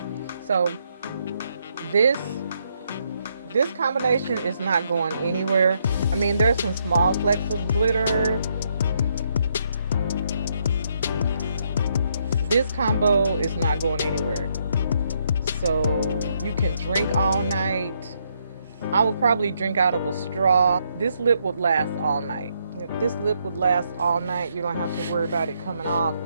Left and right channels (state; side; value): inverted; both; correlation -0.75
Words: So this combination is not going anywhere. I mean, there's some small flecks of glitter. This combo is not going anywhere. So you can drink all night. I would probably drink out of a straw. This lip would last all night. If this lip would last all night, you don't have to worry about it coming off.